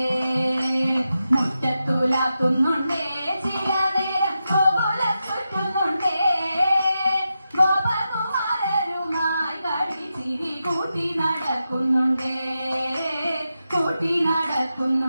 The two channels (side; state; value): both; inverted; correlation -0.89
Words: മുറ്റത്തുലാത്തുന്നുണ്ടേ. ചില നേരം ഗോകുലം ചുറ്റുന്നുണ്ടേ. ഗോപകുമാരരുമായി കളിച്ചിരി കൂട്ടി നടക്കുന്നുണ്ടേ. കൂട്ടി